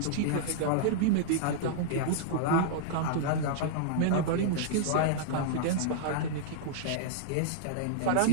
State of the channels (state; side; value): different; both; correlation -0.02